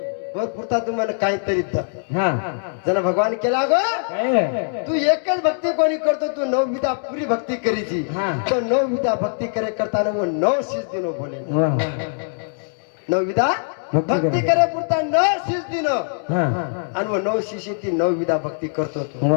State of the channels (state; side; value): silent; right; digital silence